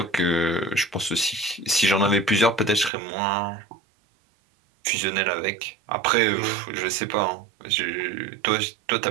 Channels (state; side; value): drops out; left; at 2.9 s